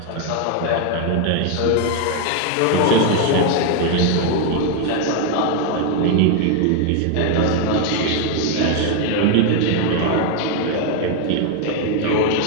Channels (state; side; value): different; both; correlation 0.00